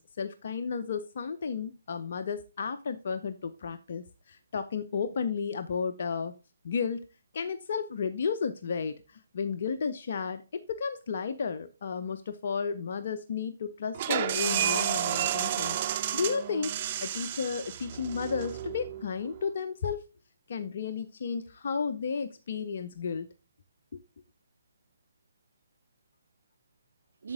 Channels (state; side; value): inverted; both; correlation -0.64